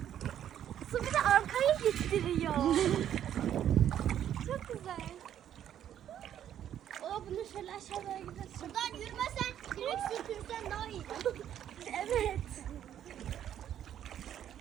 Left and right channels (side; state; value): left; quieter; 10.4 dB